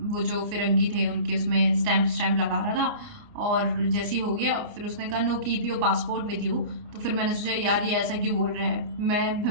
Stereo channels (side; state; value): left; late; 29 ms